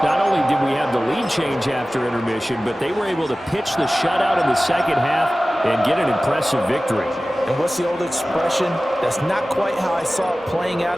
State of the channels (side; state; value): both; normal; correlation 0.97